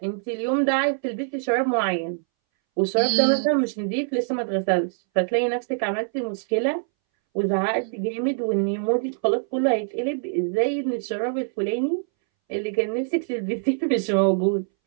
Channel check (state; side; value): silent; left; 62 dB below the other